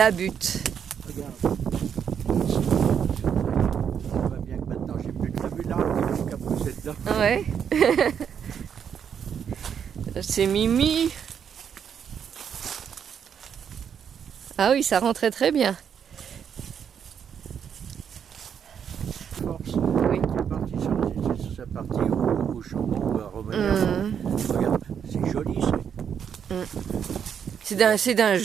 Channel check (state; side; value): quieter; left; 7.9 dB